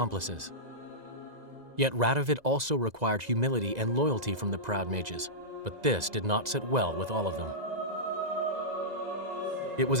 Yet Radovid also required humility and loyalty from the proud mages, but this did not sit well with all of them. It was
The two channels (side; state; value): left; late; 2.0 ms